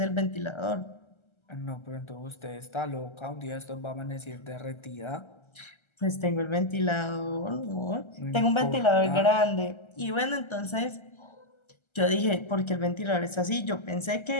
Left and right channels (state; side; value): late; right; 1.3 ms